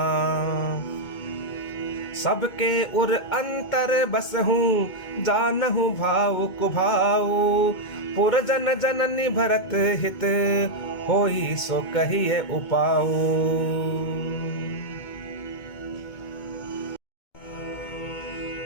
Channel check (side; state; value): right; late; 2.2 ms